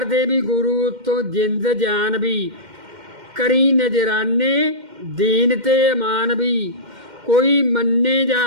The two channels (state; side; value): late; left; 2.1 ms